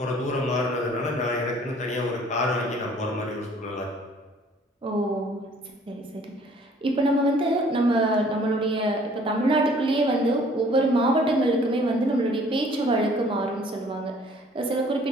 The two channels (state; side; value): normal; both; correlation 0.56